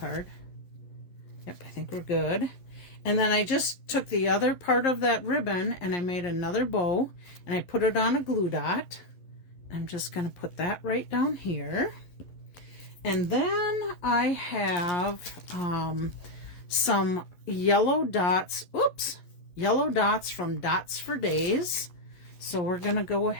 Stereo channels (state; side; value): late; right; 11 ms